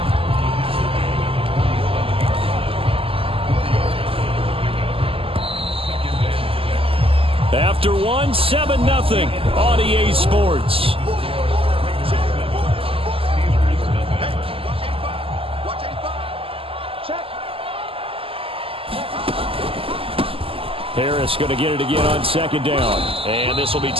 After 1, 7-0 on EA Sports. Harris going to get it again on 2nd down. And this will be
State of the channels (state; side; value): late; left; 0.26 ms